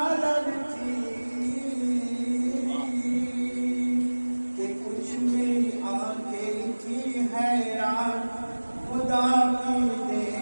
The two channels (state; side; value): inverted; both; correlation -1.00